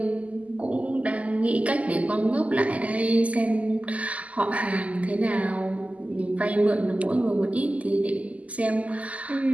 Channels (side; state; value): left; late; 0.071 ms